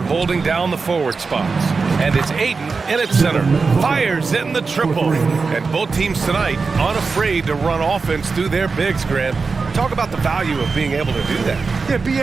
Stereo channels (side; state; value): left; quieter; 4.6 dB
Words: holding down the forward spots. And it's Ayton in at center. Fires in the triple. And both teams tonight unafraid to run offense through their bigs, Grant. Talk about the value of being able to do that. Yeah,